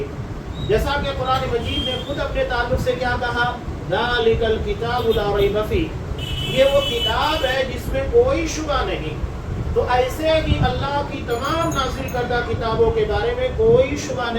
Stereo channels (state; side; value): identical; both; correlation 1.00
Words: جیسا کہ قرآن مجید نے خود اپنے تعلق سے کیا کہا، ذالک الکتاب لا ریب فیہ، یہ وہ کتاب ہے جس میں کوئی شبہ نہیں. تو ایسے ہی اللہ کی تمام نازل کردہ کتابوں کے بارے میں کوئی شبہ